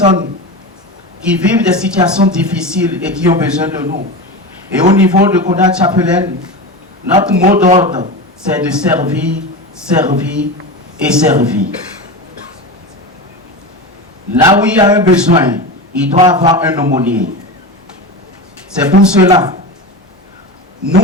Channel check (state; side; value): normal; both; correlation 0.24